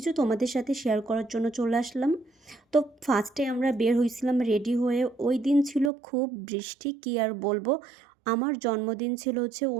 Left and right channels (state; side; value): drops out; left; at 5.9 s